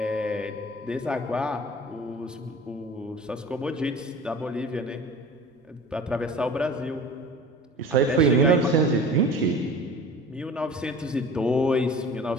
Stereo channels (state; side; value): normal; both; correlation 0.40